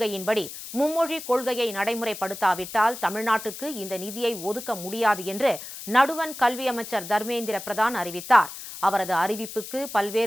மும்மொழி கொள்கையை நடைமுறைப்படுத்தாவிட்டால் தமிழ்நாட்டுக்கு இந்த நிதியை ஒதுக்க முடியாது என்று நடுவண் கல்வி அமைச்சர் தர்மேந்திர பிரதான் அறிவித்தார். அவரது அறிவிப்புக்கு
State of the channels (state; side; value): noise; left; hiss, 11 dB below the sound